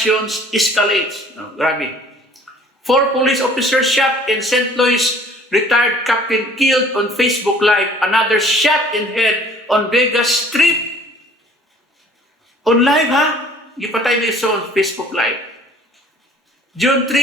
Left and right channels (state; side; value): normal; both; correlation 0.52